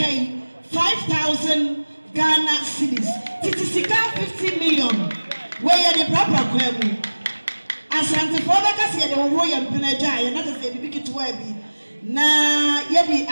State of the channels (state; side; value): inverted; both; correlation -1.00